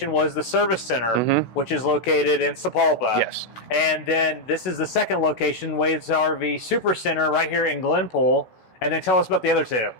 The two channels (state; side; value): late; right; 16 ms